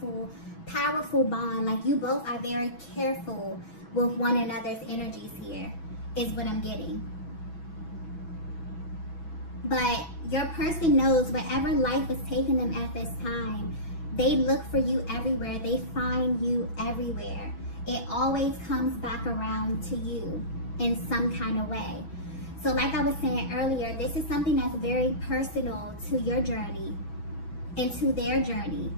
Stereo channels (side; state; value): right; late; 6.1 ms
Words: bond. Like, you both are very careful with one another's energies here, is what I'm getting. But your person knows wherever life is taking them at this time, they look for you everywhere. They find you everywhere. It always comes back around to you in some kind of way. So like I was saying earlier, this is something that's very personal to your journey and to their journey.